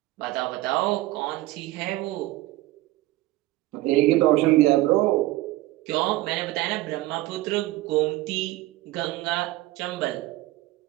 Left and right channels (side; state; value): left; quieter; 17.9 dB